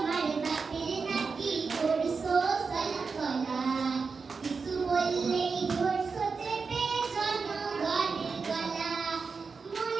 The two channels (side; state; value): left; quieter; 4.9 dB